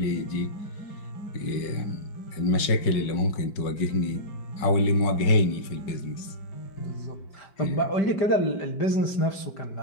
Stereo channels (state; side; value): late; right; 5.4 ms